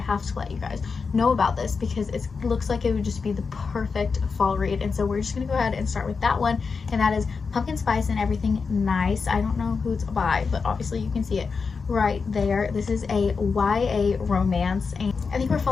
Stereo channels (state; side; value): quieter; right; 5.0 dB